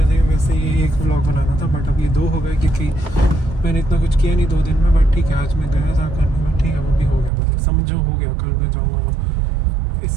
ये 1 ब्लॉग बनाना था, बट अब ये 2 हो गए क्योंकि मैंने इतना कुछ किया नहीं 2 दिन में। बट ठीक है, आज मैं गया था करने में, ठीक है, वो भी हो गया, मतलब समझो हो गया। कल मैं जाऊँगा वो,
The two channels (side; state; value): left; drops out; at 7.3 s